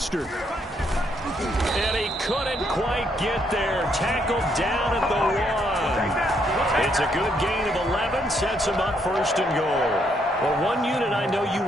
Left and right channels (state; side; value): normal; both; correlation 0.73